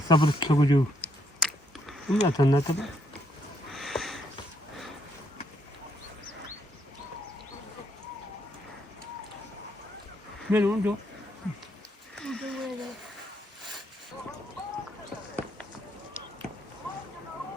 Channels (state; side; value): normal; both; correlation 0.73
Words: sabır sokucu. Bunu zaten ne tabi? Ben onu diyor.